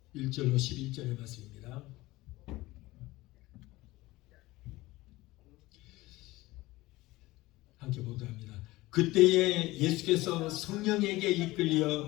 1절로 11절의 말씀입니다. 함께 보도록 합니다. 그때에 예수께서 성령에게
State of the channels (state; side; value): quieter; right; 19.3 dB